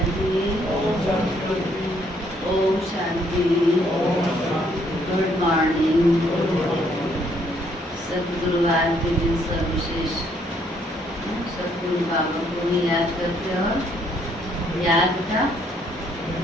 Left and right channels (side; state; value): both; normal; correlation 0.68